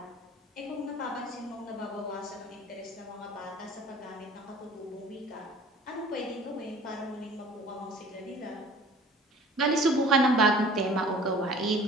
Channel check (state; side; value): normal; both; correlation 0.48